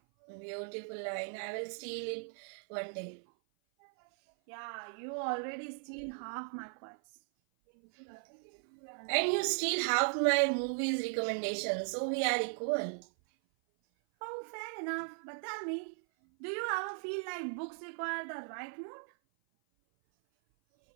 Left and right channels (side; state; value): left; silent; 53 dB below the other